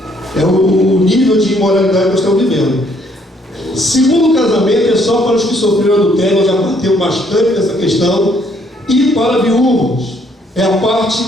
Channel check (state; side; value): normal; both; correlation 0.67